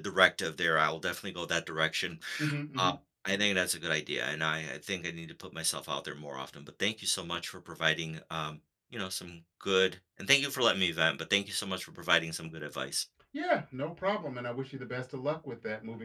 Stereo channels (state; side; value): identical; both; correlation 1.00